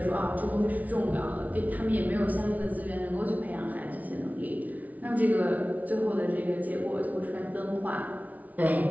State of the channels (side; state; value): left; late; 0.073 ms